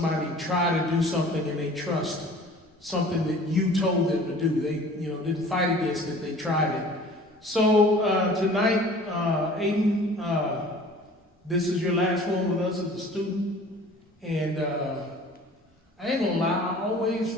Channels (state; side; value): normal; both; correlation 0.47